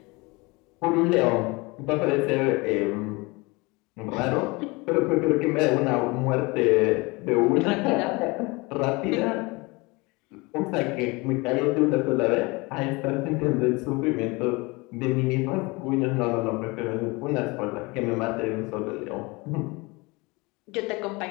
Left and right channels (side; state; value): right; quieter; 25.4 dB